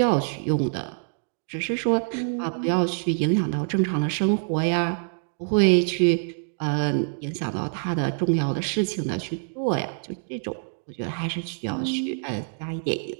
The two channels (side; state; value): left; silent; digital silence